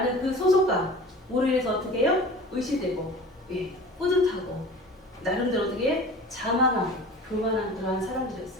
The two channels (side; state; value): both; normal; correlation 0.40